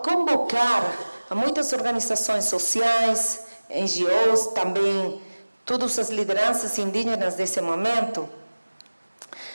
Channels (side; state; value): both; inverted; correlation -1.00